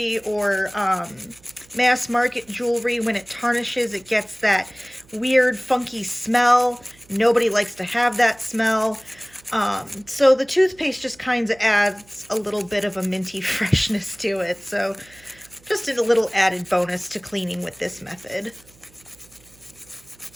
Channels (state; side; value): noise; right; hum, 27 dB below the sound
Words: or mass market jewelry, when it tarnishes, it gets that weird funky smell. Nobody likes to have that smell. So the toothpaste just kind of adds a little bit of a minty freshness to it. So just a little added bonus to cleaning with this method.